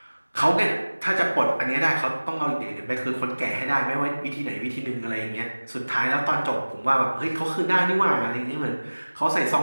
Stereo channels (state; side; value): inverted; both; correlation -1.00